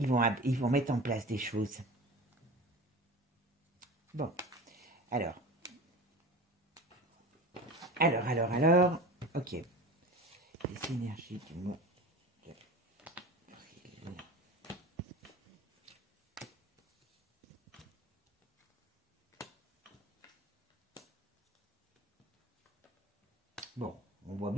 vont mettre en place des choses. Bon, alors, ok. Les énergies du mois d'avril. Bon, on voit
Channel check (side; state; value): both; normal; correlation 0.34